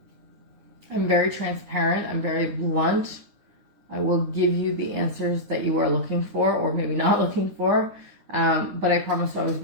I'm very transparent. I'm very blunt. I will give you the answers that you are looking for, or maybe not looking for. But I promise to always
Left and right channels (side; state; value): left; late; 9.7 ms